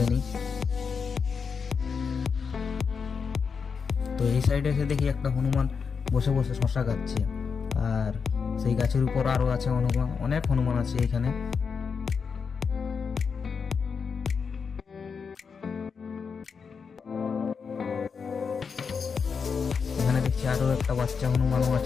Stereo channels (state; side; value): quieter; right; 5.8 dB